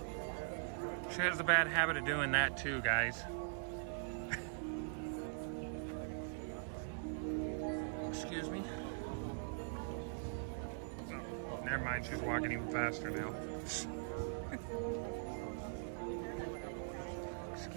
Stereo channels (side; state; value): left; silent; digital silence